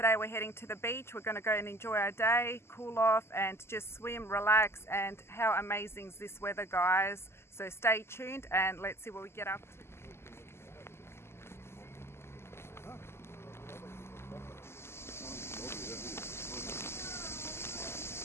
we're heading to the beach. We're going to go and enjoy our day, cool off and just swim, relax. And how amazing is this weather, guys? So stay tuned and let's see what we get up to.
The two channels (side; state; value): right; late; 0.12 ms